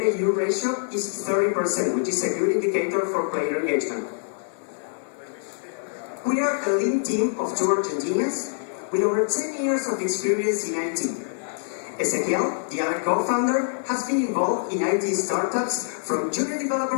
ratio is 30%, which is a good indicator for player engagement. We are a lean team of 2 Argentinians with over 10 years of experience in IT. Ezequiel, the other co-founder, has been involved in IT startups from junior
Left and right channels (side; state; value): right; silent; digital silence